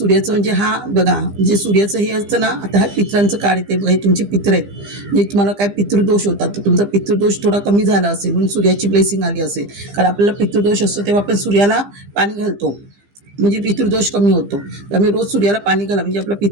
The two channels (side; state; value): left; late; 15 ms